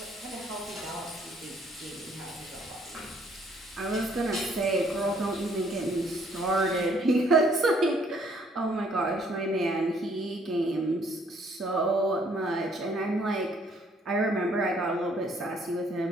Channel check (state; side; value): normal; both; correlation 0.64